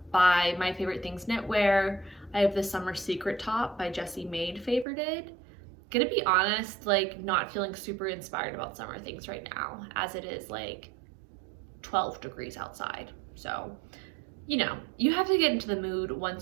My Favorite Things Knitwear. I have the Summer Secret top by Jessie Maed favorited. Gonna be honest, like not feeling super inspired about summer things right now, as it is like 12 degrees outside. So, you know, you have to get into the mood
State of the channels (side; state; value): left; drops out; at 4.9 s